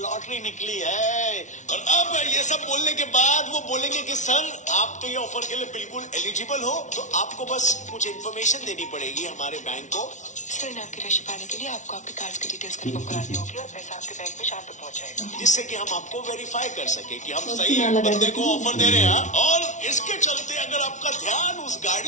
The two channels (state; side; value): late; right; 0.36 ms